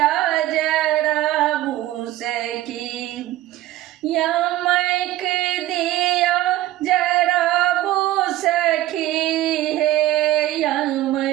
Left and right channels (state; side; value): quieter; left; 15.1 dB